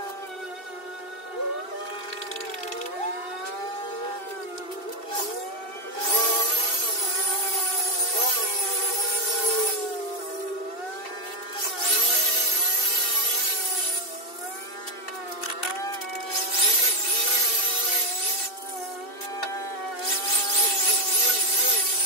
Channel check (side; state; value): right; late; 2.7 ms